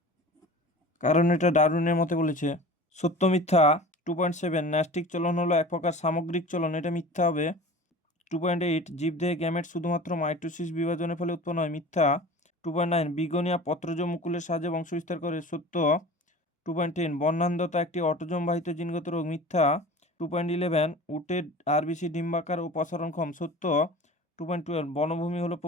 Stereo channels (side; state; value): both; normal; correlation 0.38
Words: কারণ এটা ডারউইনের মতে বলেছে। সত্য মিথ্যা 2.7 ন্যাস্টিক চলন হলো এক প্রকার সামগ্রিক চলন, এটা মিথ্যা হবে। 2.8 জীবদেহে গ্যামেট শুধুমাত্র মাইটোসিস বিভাজনের ফলে উৎপন্ন হয়, মিথ্যা। 2.9 বিগোনিয়া পত্রজ মুকুলের সাহায্যে বংশবিস্তার করে, সত্য। 2.10 বর্ণান্ধতা একটি অটোজোম বাহিত জিনগত রোগ, মিথ্যা। 2.11 উটের আরবিসি ডিম্বাকার ও প্রসারণক্ষম, সত্য। 2.12 বনভূমি হলো